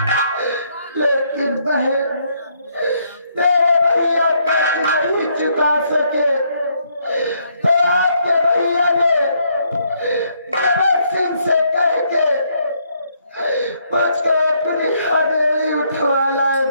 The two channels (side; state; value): both; inverted; correlation -0.72